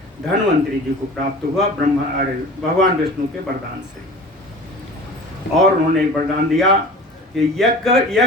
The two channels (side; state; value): both; normal; correlation 0.39